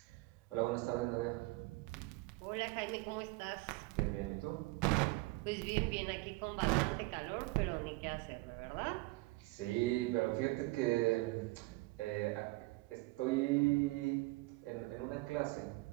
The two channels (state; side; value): quieter; left; 22.7 dB